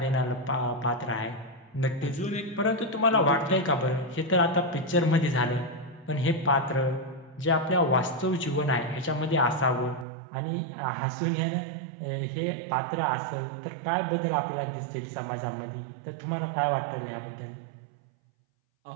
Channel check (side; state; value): left; drops out; at 10.1 s